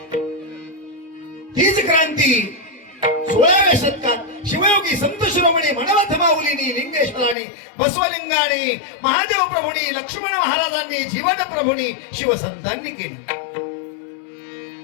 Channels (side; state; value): right; drops out; at 7.4 s